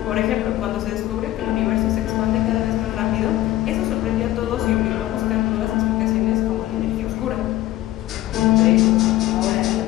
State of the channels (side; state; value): right; quieter; 15.2 dB